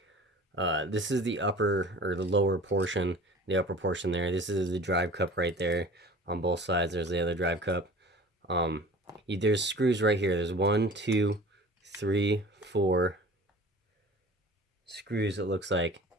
this is the upper, or the lower portion, the upper portion there. This is the drive cup right there on both sides. There's the other drive cup. There's screws right here. There's 1, 2, 3, 4 screws, it looks like.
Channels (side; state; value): both; normal; correlation 0.43